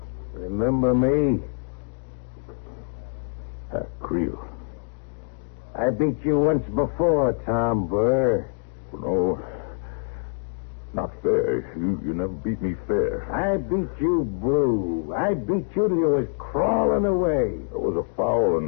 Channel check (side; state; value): right; silent; digital silence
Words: Remember me? Creel. I beat you once before, Tom Burr. No, not fair. You never beat me fair. I beat you blue. I beat you till you was crawling away. It was a foul